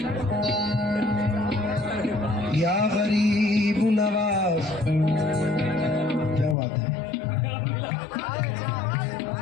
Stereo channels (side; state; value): right; drops out; at 6.6 s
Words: या गरीब नवाज, क्या बात है।